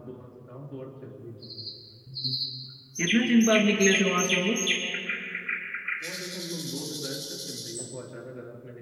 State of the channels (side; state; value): both; identical; correlation 1.00